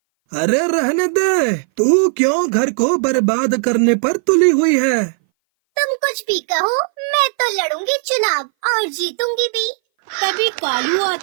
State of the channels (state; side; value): silent; left; 60 dB below the other